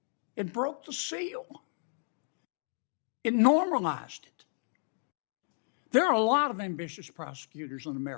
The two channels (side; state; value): right; silent; 56 dB below the other